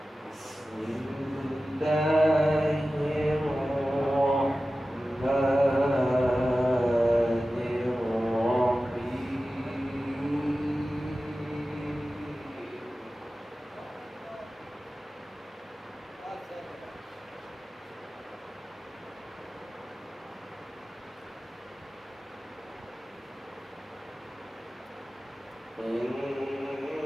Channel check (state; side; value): normal; both; correlation 0.95